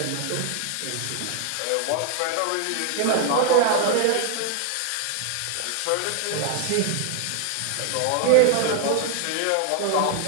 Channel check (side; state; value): both; different; correlation 0.00